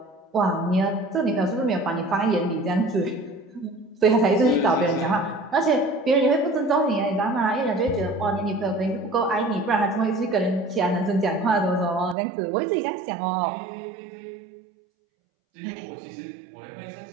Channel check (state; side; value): drops out; left; at 12.2 s